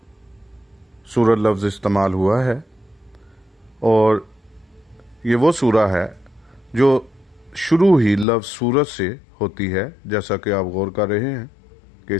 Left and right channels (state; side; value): drops out; right; at 8.2 s